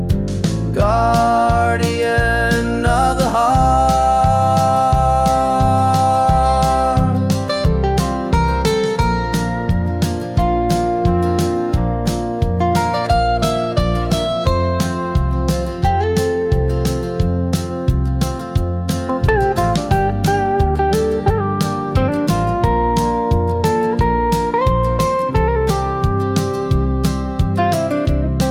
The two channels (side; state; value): both; identical; correlation 1.00